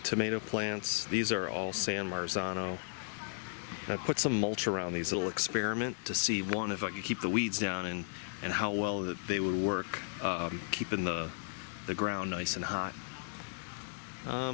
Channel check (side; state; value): right; silent; digital silence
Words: tomato plants. These are all San Marzano. I put some mulch around these little experiment to see, one, if I could keep the weeds down and how well that they would work keeping the ground nice and hot.